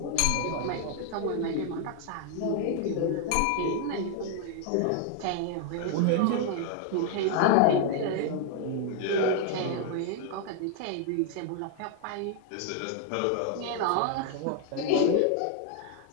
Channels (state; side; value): different; both; correlation 0.00